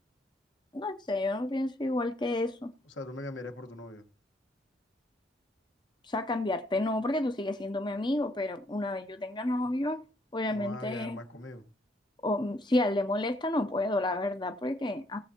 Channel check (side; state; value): both; normal; correlation 0.69